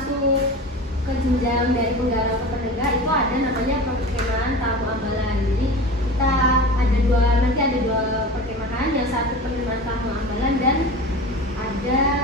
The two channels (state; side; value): normal; both; correlation 0.33